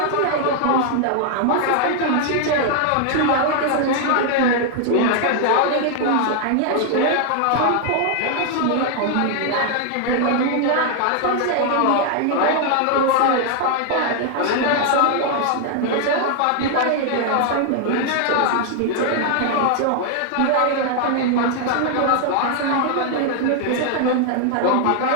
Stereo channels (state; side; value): different; both; correlation 0.00